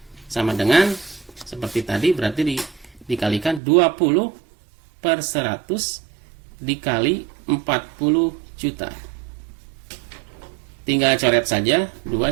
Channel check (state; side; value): drops out; left; at 3.6 s